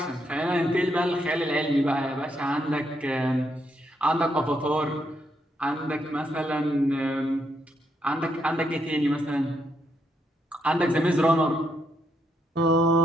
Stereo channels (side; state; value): both; normal; correlation 0.78